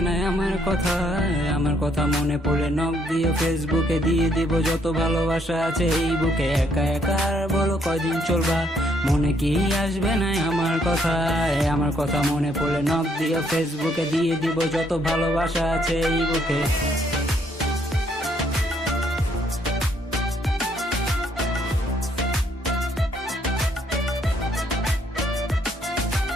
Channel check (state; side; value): normal; both; correlation 0.70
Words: না আমার কথা মনে পড়ে নক দিয়ে ফেসবুকে দিয়ে দিব যত ভালোবাসা আছে এই বুকে। একা একার বলো কয়দিন চলবা, মনে কি আসবে না আমার কথা মনে পড়লে নক দিয়ে ফেসবুকে দিয়ে দিব যত ভালোবাসা আছে এই বুকে।